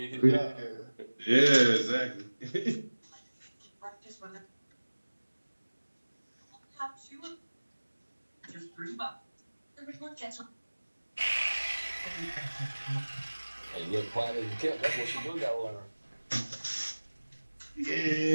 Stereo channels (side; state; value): both; inverted; correlation -1.00